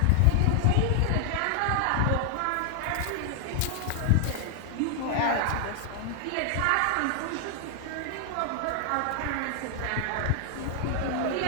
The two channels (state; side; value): different; both; correlation 0.00